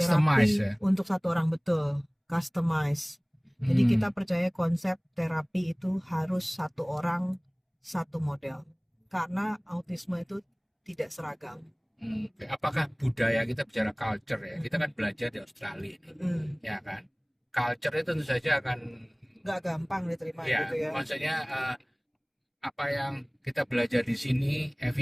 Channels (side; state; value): both; identical; correlation 1.00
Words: terapi ya? untuk satu orang, betul, customize. Jadi kita percaya konsep terapi itu harus satu orang satu model karena autisme itu tidak seragam. Oke. Apakah budaya, kita bicara culture ya? Kita kan belajar di Australia ini, ya kan? Culture itu tentu saja akan Nggak gampang diterima ya, gitu ya. maksudnya apa yang kita belajar di sini,